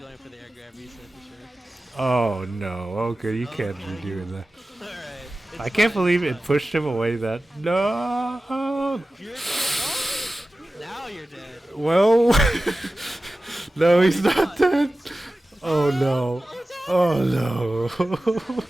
for the air grab reset for sure. Oh no, okay, you can't be doing that. Alright. I can't believe it pushed him away that... No! Now you're dead. Well... No, he's not dead! Oh no. Oh no.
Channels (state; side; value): normal; both; correlation 0.95